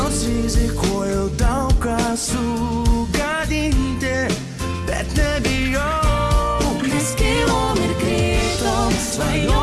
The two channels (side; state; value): both; identical; correlation 1.00